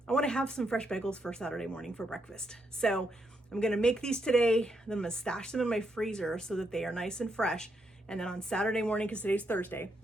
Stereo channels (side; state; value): both; normal; correlation 0.79